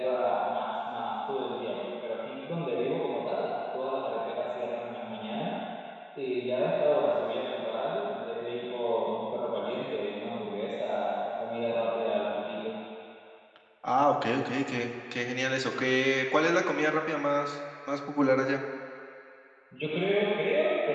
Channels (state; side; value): identical; both; correlation 1.00